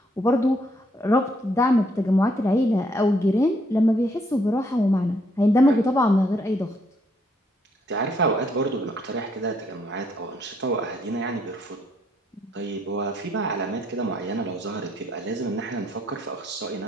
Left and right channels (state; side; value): normal; both; correlation 0.70